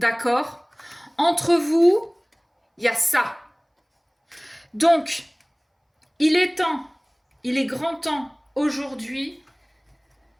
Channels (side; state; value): both; identical; correlation 1.00